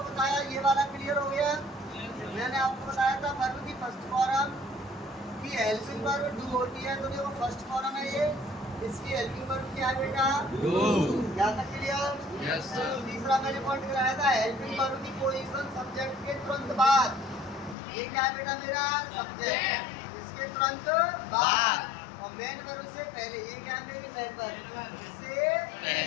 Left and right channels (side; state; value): right; drops out; at 17.8 s